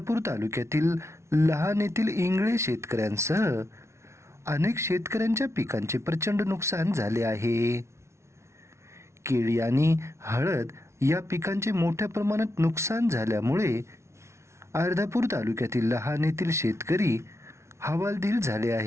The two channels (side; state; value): left; late; 0.13 ms